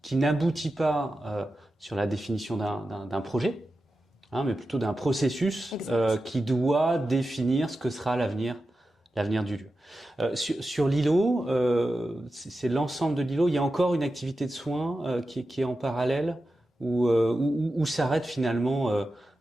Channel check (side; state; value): both; normal; correlation 0.92